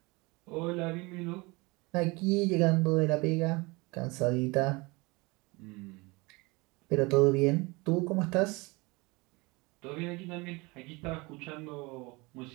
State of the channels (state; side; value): quieter; left; 25.2 dB